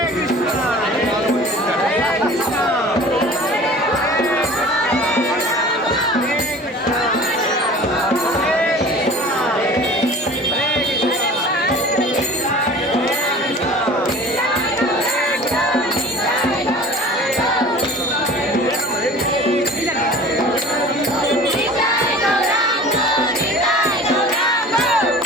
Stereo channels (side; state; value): both; normal; correlation 0.42